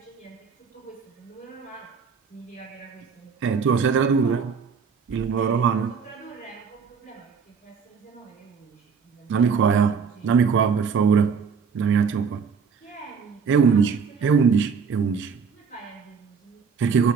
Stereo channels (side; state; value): left; quieter; 5.9 dB